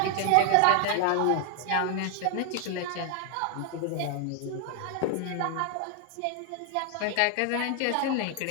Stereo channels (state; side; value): different; both; correlation 0.00